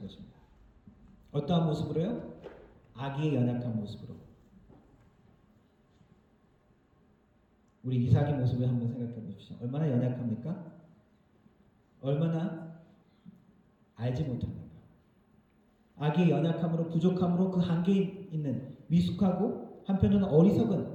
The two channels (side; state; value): both; identical; correlation 1.00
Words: 것입니다. 어떠한 모습으로요? 아기의 연약한 모습으로. 우리 이삭의 모습을 한번 생각해 보십시오. 얼마나 연약합니까? 얼마나 알지 못합니까? 아기의 연약함으로 부족함으로 그 한계에 있는 미숙하고 한편으로는